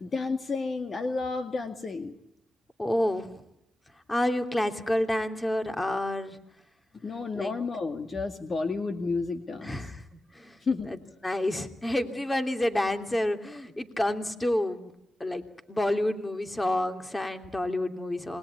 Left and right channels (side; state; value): both; normal; correlation 0.94